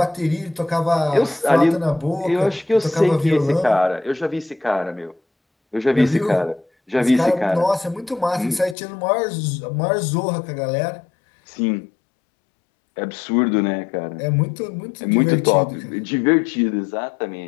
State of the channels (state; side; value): drops out; right; at 8.8 s